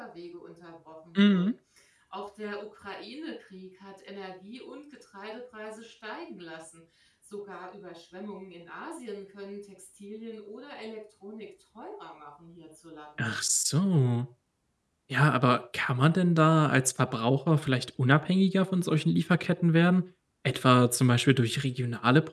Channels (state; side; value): identical; both; correlation 1.00